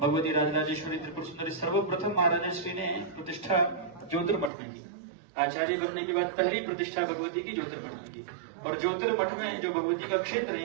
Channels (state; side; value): drops out; left; at 4.5 s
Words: राजराजेश्वरी त्रिपुर सुंदरी सर्वप्रथम महाराज श्री ने प्रतिष्ठा ज्योतिर्मठ में की। आचार्य बनने के बाद पहली प्रतिष्ठा भगवती की ज्योतिर्मठ में की, और ज्योतिर्मठ में जो भगवती का क्षेत्र है,